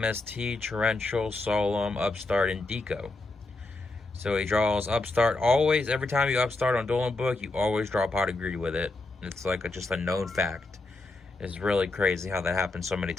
Torrential, Solemn, Upstart, and Deco. So he draws Upstart. Always, every time you Upstart on Dueling Book, you always draw Pot of Greed with it. It's like just a known fact. It's really crazy how that happens so many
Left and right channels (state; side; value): quieter; right; 3.2 dB